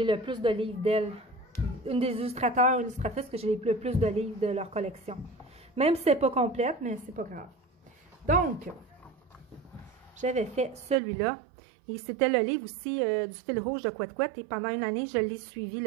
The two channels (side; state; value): left; drops out; at 11.0 s